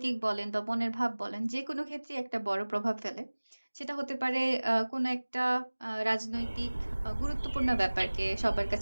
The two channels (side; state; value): both; inverted; correlation -1.00